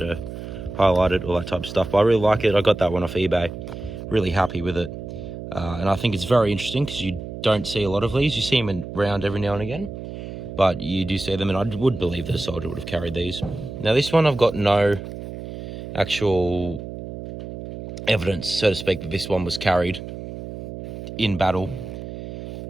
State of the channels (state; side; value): noise; right; hum, 10 dB below the sound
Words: are highlighted, all that type of stuff. But I really like it. I got that one off eBay. Really happy with it. And I think it's very interesting because you don't see a lot of these. You see them around every now and again, but you do see them, and I would believe that a soldier would have carried these. Now this one, I've got no actual evidence, so to speak, that this one was carried in battle.